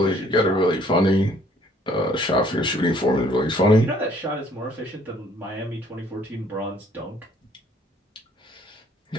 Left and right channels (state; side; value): normal; both; correlation 0.60